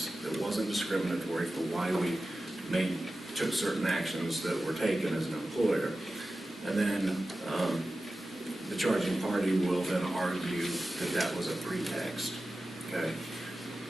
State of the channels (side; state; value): both; normal; correlation 0.94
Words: that wasn't discriminatory for why we took certain actions that were taken as an employer. And then the charging party will then argue that that was a pretext. Okay.